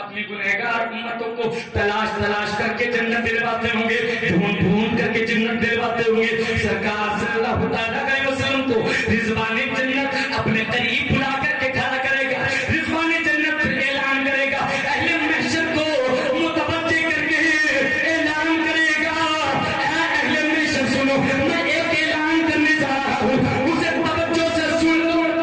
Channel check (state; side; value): identical; both; correlation 1.00